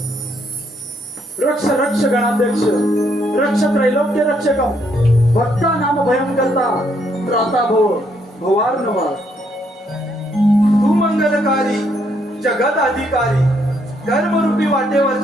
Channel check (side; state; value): both; normal; correlation 0.72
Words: रक्ष रक्ष गणाध्यक्ष रक्ष त्रैलोक्य रक्षकम भक्ता नाम भयं करता त्राता भव भवार नवा. तू मंगलकारी जगत अधिकारी कर्मरूपी